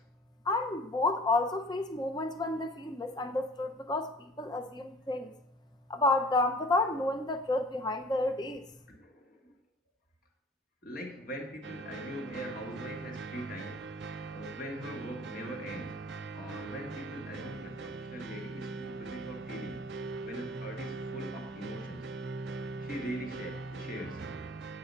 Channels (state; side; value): normal; both; correlation 0.48